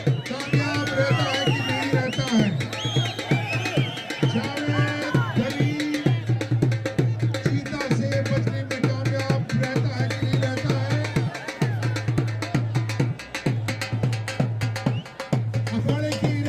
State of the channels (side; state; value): both; identical; correlation 1.00